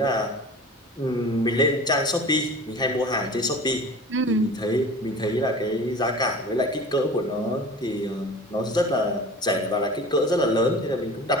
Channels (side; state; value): both; normal; correlation 0.38